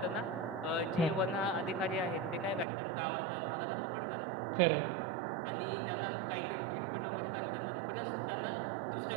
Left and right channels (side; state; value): left; drops out; at 2.7 s